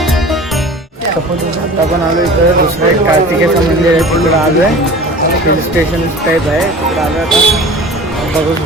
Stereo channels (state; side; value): normal; both; correlation 0.40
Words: आलो इथं दुसरं एक कार्तिकेचं मंदिर आहे तिकडं आलो आहे. हिल स्टेशन टाईप आहे तिकडं आलो आता बघू